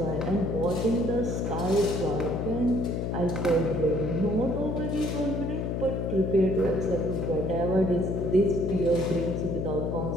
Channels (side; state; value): left; noise; hum, 1 dB below the sound